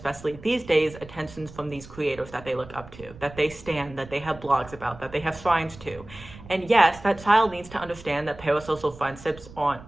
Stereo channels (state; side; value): noise; right; rumble, 18 dB below the sound